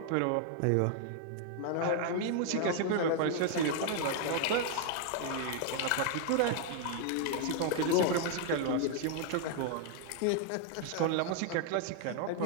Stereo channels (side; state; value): both; different; correlation 0.00